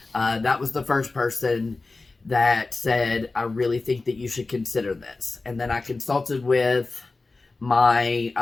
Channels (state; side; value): quieter; right; 3.5 dB